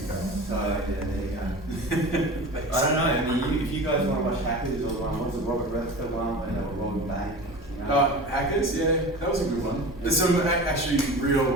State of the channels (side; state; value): both; normal; correlation 0.34